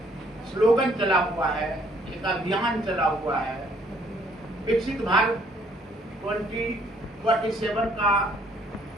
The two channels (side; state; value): both; normal; correlation 0.64